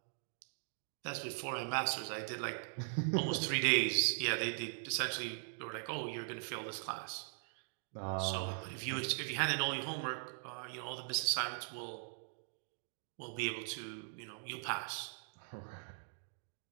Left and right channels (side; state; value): left; silent; digital silence